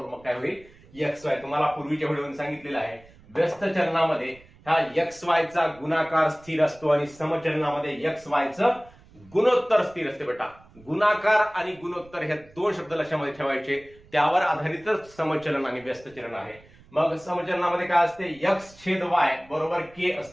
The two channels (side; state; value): right; noise; rumble, 25 dB below the sound